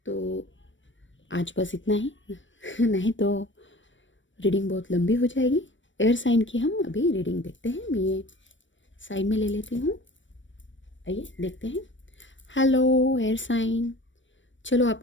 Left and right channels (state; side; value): late; right; 0.55 ms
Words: तो आज बस इतना ही नहीं तो रीडिंग बहुत लंबी हो जाएगी। एयर साइन की हम अभी रीडिंग देखते हैं। मैं ये साइड में ले लेती हूँ, आइए देखते हैं। हेलो एयर साइन, चलो